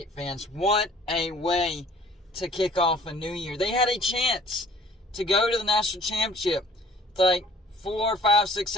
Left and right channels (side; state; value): both; normal; correlation 0.53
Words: fans. What a way to kick off a new year. They had a chance to go to the national championship. It's like 4, 5, 6,